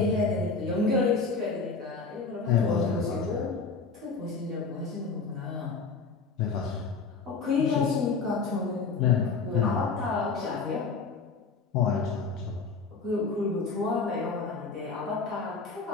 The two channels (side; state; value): right; quieter; 4.5 dB